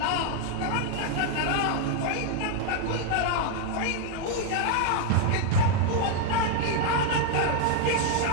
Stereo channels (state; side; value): different; both; correlation 0.00